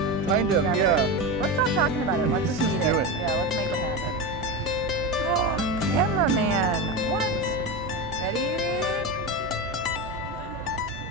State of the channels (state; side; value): normal; both; correlation 0.19